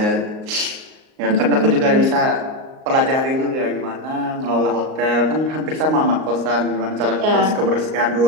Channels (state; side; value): late; left; 38 ms